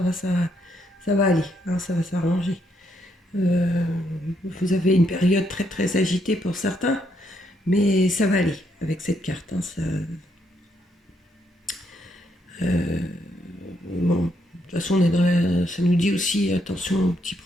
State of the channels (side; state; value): both; normal; correlation 0.75